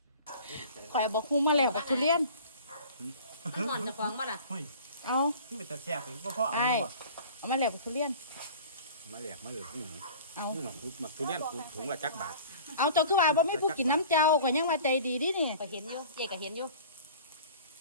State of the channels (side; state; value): both; inverted; correlation -0.43